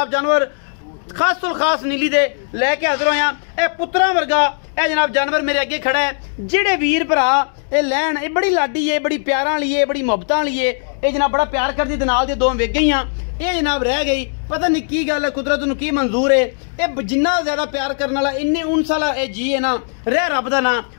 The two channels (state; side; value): silent; right; digital silence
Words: जानवर खास तो खास नीली दे लैके हाजिर होया। ए पुत्रा वर्गा ए जनाब जानवर मेरे अगे खड़ा है। जेड़े वीर भरा ये लैन ये बड़ी लाडी है, बड़ी प्यारा वाली है, बड़ी मुहब्बत वाली है। ये जनाब बड़ा प्यार करती नाल दे दो वेख गई। ये जनाब रह गई पता नहीं की गल है, कुदरत नूं की मंजूर है। ये जिन्ना ज्यादा प्यार करने वाला इन्ने उनस वाला ये जी है ना, रह रब दा ना।